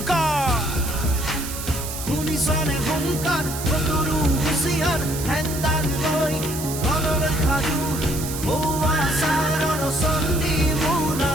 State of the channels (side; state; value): right; noise; hiss, 8 dB below the sound